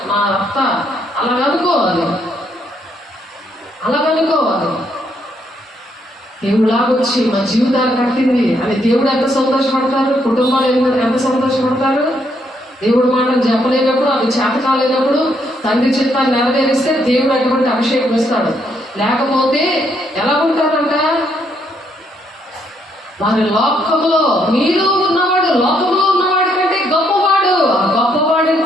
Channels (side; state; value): both; normal; correlation 0.73